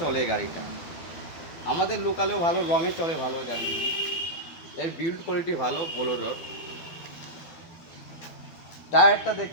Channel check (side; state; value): right; late; 12 ms